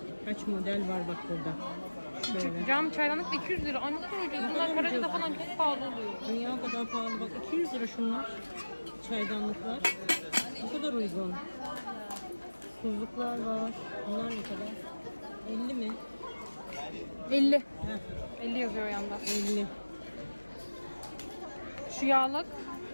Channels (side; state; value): both; inverted; correlation -1.00